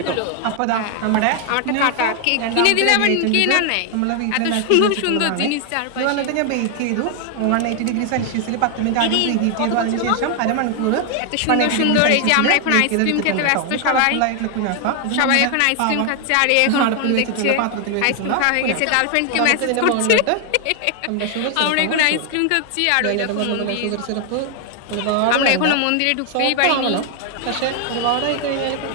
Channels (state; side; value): different; both; correlation 0.00